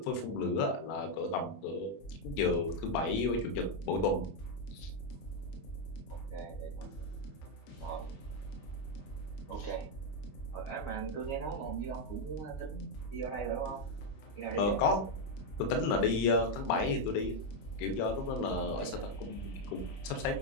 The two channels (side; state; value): right; late; 20 ms